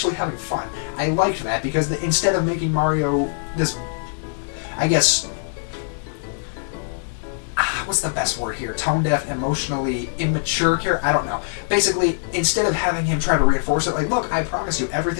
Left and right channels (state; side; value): silent; right; 57 dB below the other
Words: having fun. I liked that, because instead of making Mario this, I guess, what's the best word here? Tone-deaf, emotionally immature character? I don't know. Basically, instead of having him try to reinforce it, like, look, I promise you,